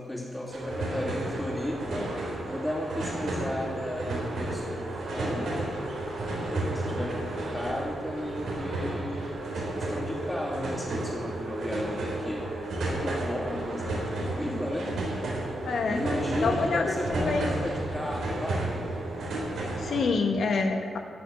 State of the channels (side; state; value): both; normal; correlation 0.83